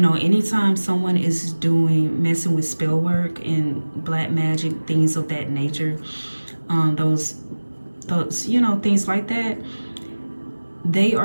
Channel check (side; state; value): both; inverted; correlation -1.00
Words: anytime someone is messing with spell work and black magic, things of that nature, those, you know, things like that, they